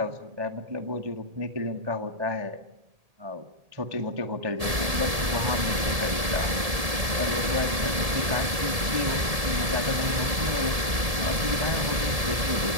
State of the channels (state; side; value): late; left; 1.7 ms